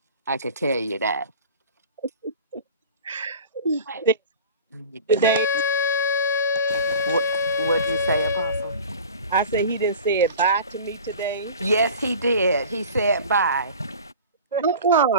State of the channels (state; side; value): inverted; both; correlation -0.39